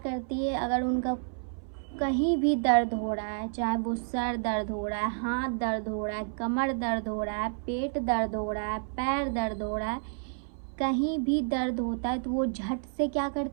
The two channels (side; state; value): left; silent; 58 dB below the other